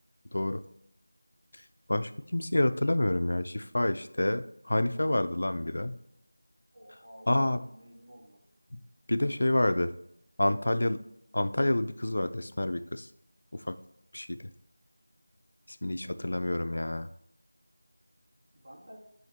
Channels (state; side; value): inverted; both; correlation -1.00